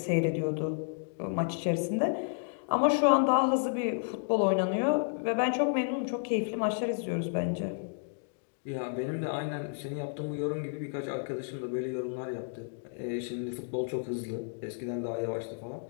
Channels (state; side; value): silent; right; digital silence